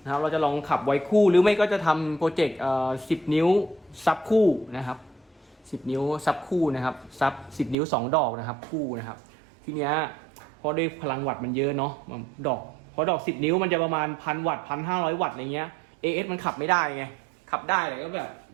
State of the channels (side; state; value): left; drops out; at 7.8 s